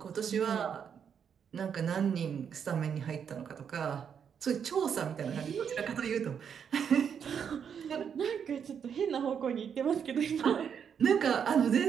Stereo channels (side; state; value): left; quieter; 7.6 dB